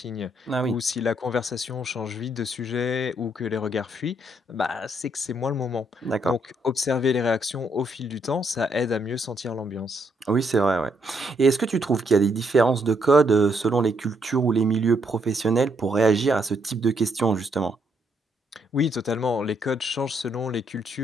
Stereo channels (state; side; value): normal; both; correlation 0.73